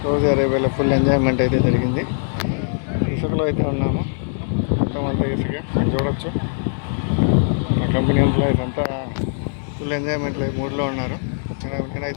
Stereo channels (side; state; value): right; silent; digital silence